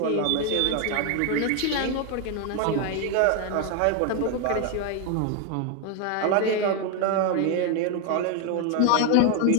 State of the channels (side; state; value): both; different; correlation 0.01